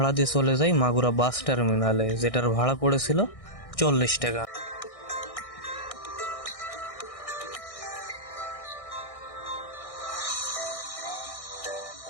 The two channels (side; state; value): right; late; 1.6 ms